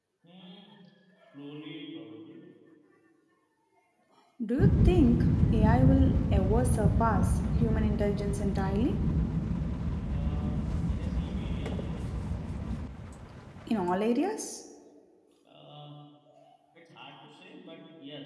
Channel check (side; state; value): both; identical; correlation 1.00